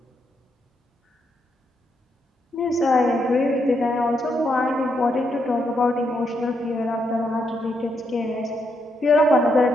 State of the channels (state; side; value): normal; both; correlation 0.79